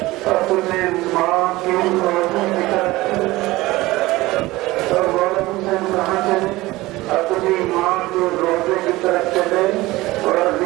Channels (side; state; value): left; quieter; 19.2 dB